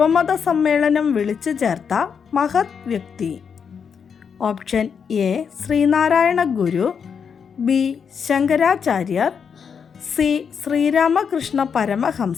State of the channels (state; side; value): quieter; right; 6.7 dB